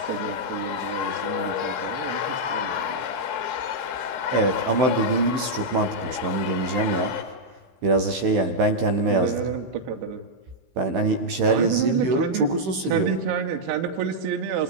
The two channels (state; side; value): late; left; 16 ms